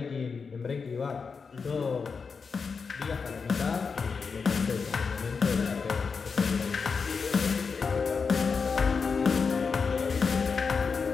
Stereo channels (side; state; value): right; quieter; 5.3 dB